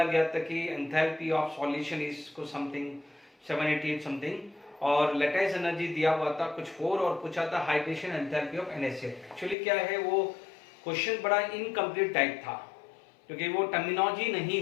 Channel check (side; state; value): right; drops out; at 9.6 s